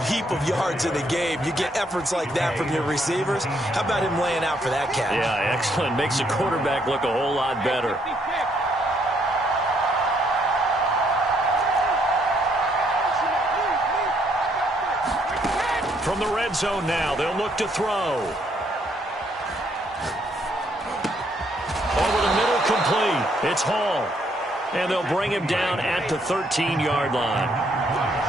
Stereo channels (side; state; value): both; normal; correlation 0.71